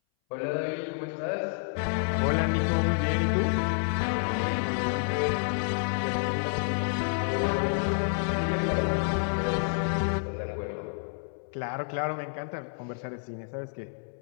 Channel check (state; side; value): silent; right; 59 dB below the other